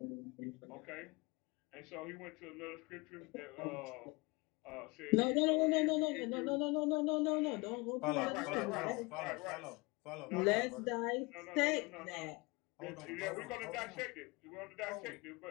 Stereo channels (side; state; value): right; quieter; 26.0 dB